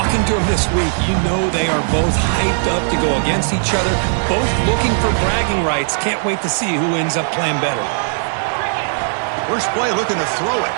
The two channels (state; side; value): silent; left; 60 dB below the other